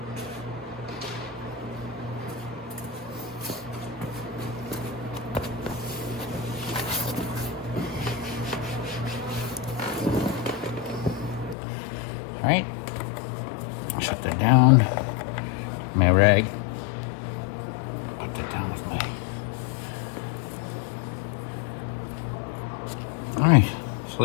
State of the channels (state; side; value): drops out; right; at 11.6 s